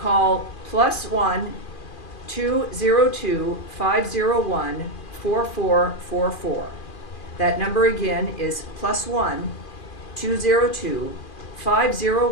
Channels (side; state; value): right; late; 2.4 ms